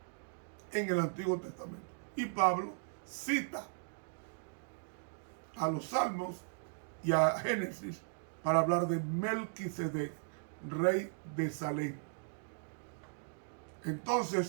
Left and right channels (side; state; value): left; silent; digital silence